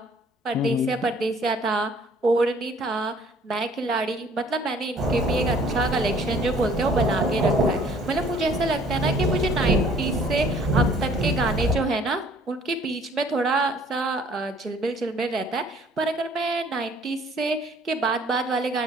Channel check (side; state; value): both; normal; correlation 0.57